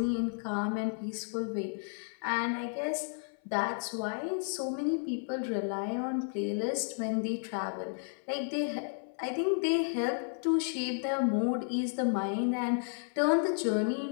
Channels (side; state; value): right; silent; 55 dB below the other